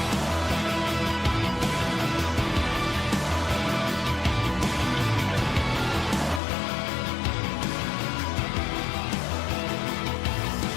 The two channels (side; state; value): right; drops out; at 6.4 s